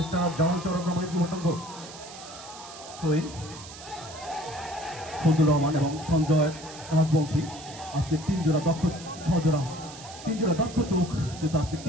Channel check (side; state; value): right; noise; hiss, 15 dB below the sound